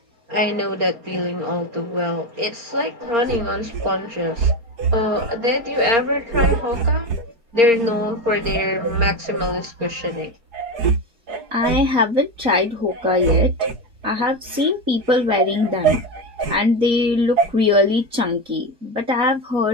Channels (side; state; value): left; late; 4.3 ms